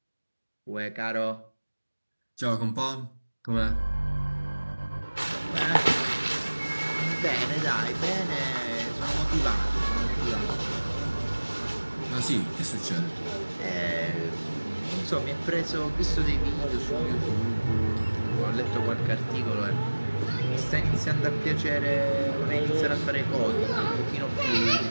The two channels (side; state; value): both; inverted; correlation -1.00